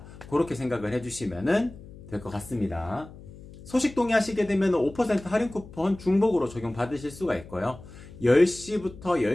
그렇게 생각을 해주시면 될 것 같습니다. 소식 동의하시게 되면 5% 할인 쿠폰 중복으로 적용받으실 수가 있고요. 10시부터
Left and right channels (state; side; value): noise; left; hum, 17 dB below the sound